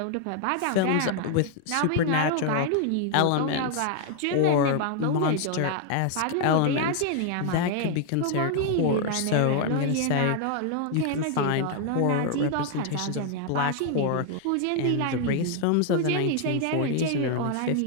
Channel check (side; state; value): both; different; correlation 0.00